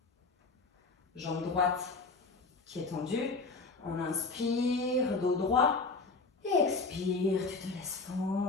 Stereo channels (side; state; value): right; quieter; 3.9 dB